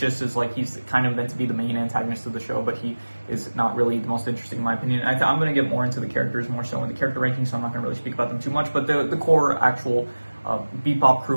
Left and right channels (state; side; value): inverted; both; correlation -1.00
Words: like, he's kind of meant to be the main antagonist of the show, but he is not really the most interesting in my opinion. I'm going to get more into the characters more so in the character ranking, so I'm not going to really speak about them too much. But the core actual Bebop